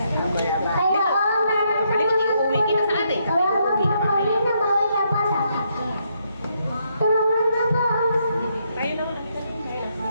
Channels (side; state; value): both; inverted; correlation -0.76